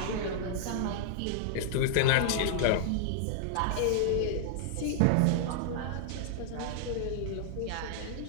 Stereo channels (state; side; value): different; both; correlation -0.01